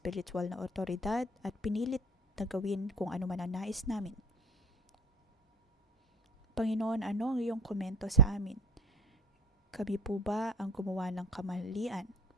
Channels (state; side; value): normal; both; correlation 0.42